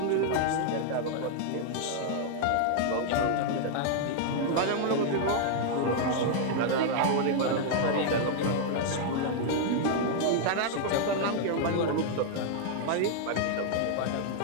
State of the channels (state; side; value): different; both; correlation -0.01